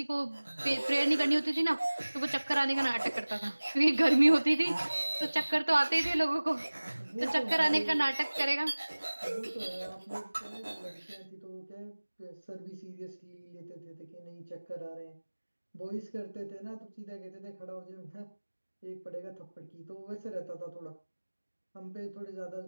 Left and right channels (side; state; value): both; inverted; correlation -1.00